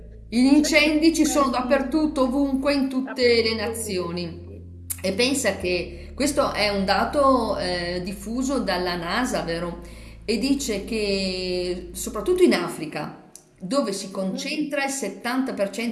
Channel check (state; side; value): identical; both; correlation 1.00